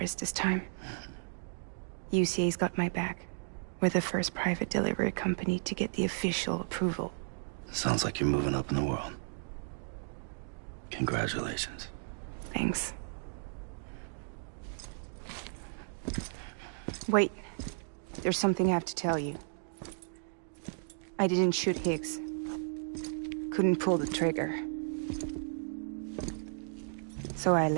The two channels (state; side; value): silent; left; digital silence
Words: this time. UCA's got my back. We're the first private delivery company to get the official approval. Sounds like you're moving up in the world. Congratulations. Thanks. Wait. There's something I have to tell you. I didn't shoot Higgs. Couldn't pull the trigger. So I